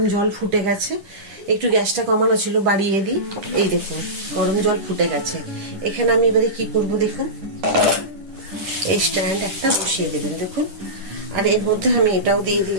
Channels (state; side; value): late; left; 9.9 ms